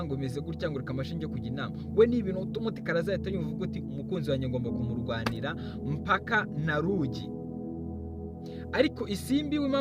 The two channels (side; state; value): both; identical; correlation 1.00